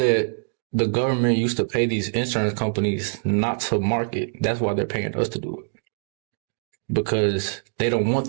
the government used to pay these insurance companies not to market? That's why they're paying us to do it. Because they don't want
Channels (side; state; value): left; silent; digital silence